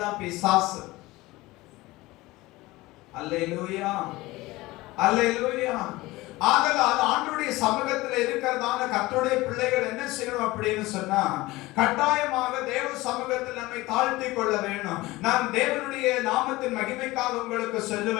தான் பிசாசு. அல்லேலூயா, அல்லேலூயா. ஆதலால் ஆண்டவருடைய சமூகத்தில் இருக்கிறதான கர்த்தருடைய பிள்ளைகள் என்ன செய்யணும் அப்படின்னு சொன்னா, கட்டாயமாக தேவ சமூகத்தில் நம்மை தாழ்த்தி கொள்ள வேணும். நான் தேவனுடைய நாமத்தின் மகிமைக்காக உங்களுக்கு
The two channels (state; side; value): quieter; right; 19.8 dB